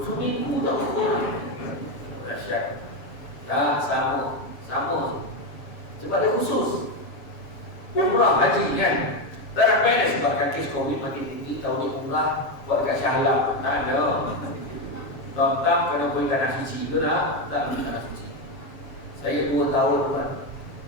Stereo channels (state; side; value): late; right; 7.3 ms